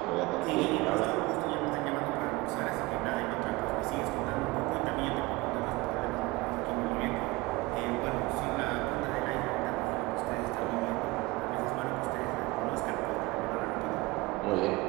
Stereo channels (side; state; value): left; quieter; 22.0 dB